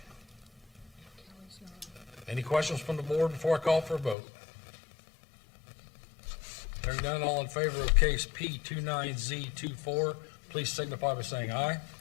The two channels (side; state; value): right; drops out; at 4.2 s